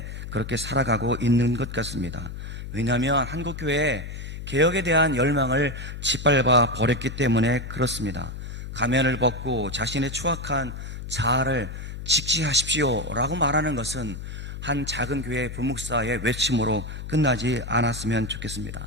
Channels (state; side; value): noise; left; hum, 8 dB below the sound